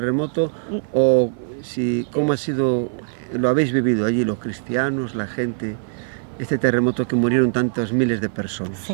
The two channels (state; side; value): silent; left; 58 dB below the other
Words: ¿O cómo ha sido, lo habéis vivido allí los cristianos, la gente este terremoto que murieron tantos miles de personas.